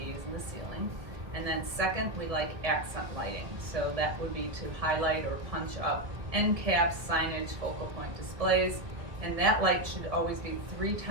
in the ceiling. And then second, we like accent lighting. So that would be to highlight or punch up end caps, signage, focal point displays. And that light should always be 3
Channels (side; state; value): left; late; 1.7 ms